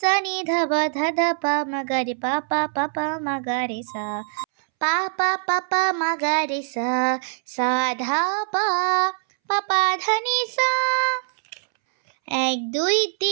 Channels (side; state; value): left; silent; 63 dB below the other